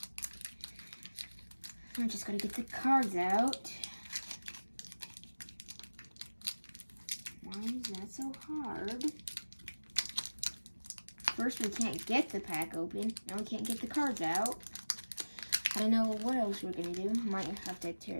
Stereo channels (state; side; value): inverted; both; correlation -1.00